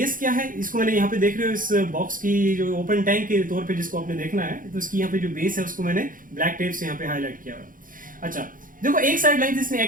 क्या है, इसको मैंने यहाँ पे देख रहे हो इस बॉक्स की जो ओपन टैंक के तौर पे जिसको आपने देखना है, तो इसकी यहाँ पे जो बेस है उसको मैंने ब्लैक टेप से यहाँ पे हाईलाइट किया हुआ है। अच्छा, देखो एक साइड लेंथ इसने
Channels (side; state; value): left; late; 0.40 ms